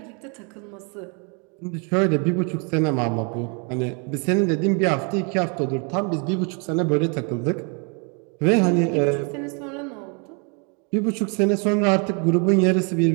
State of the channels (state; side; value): quieter; left; 35.7 dB